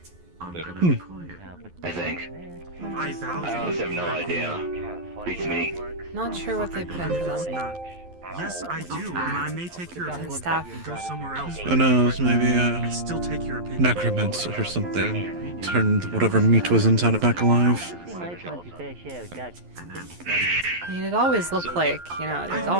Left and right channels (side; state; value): left; late; 11 ms